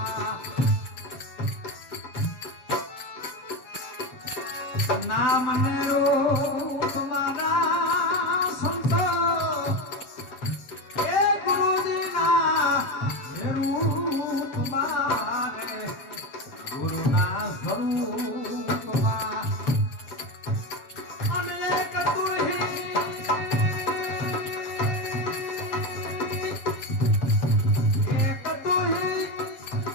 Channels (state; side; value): late; right; 7.8 ms